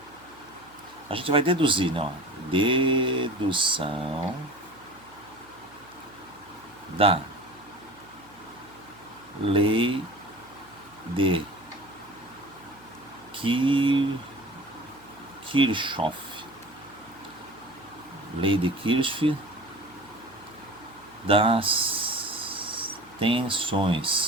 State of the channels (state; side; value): noise; right; hum, 27 dB below the sound